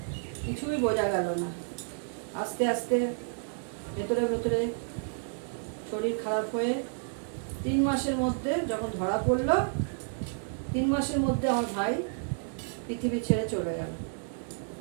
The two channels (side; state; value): left; silent; digital silence